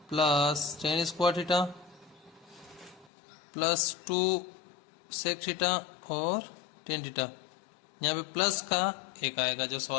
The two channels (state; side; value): drops out; right; at 3.1 s